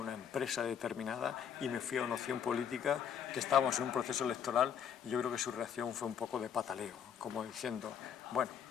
empresa determinada y me fui a una opción política, que estábamos en un proceso electoral, y yo creo que su reacción fue un poco de pataleo, como diciendo, bueno,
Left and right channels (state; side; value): quieter; right; 8.2 dB